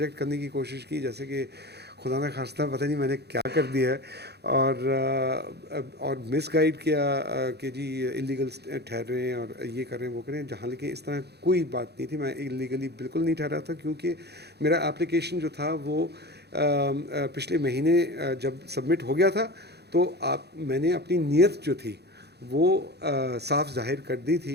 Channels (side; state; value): left; late; 0.48 ms